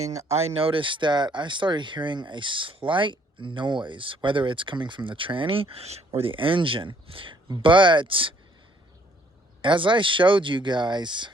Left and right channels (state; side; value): normal; both; correlation 0.64